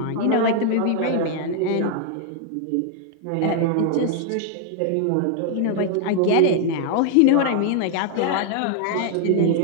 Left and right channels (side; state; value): both; different; correlation 0.00